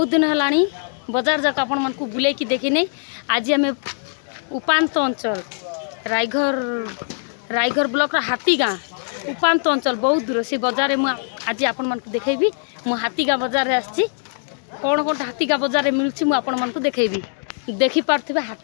दिन है बजार जाक आपण मन को बुले की देखी आज आम उपात अंचल रायघर ब्लॉक हाथीगाँ उपात अंचल बहुत दूर से बजार में आज आपण मन को देखेबी। मु हाथीगाँ बजार आसी कौन कौन हाथीगाँ बजार मिलूँ मुझे आपण मन को देखेबी। देखी पार्थे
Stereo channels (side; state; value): right; silent; 64 dB below the other